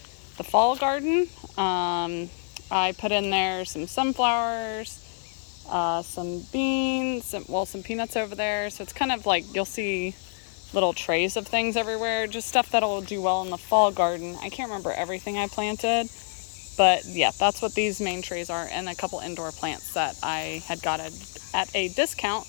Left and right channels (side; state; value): right; silent; 58 dB below the other